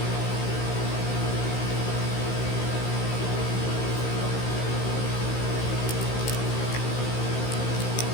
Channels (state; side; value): late; right; 16 ms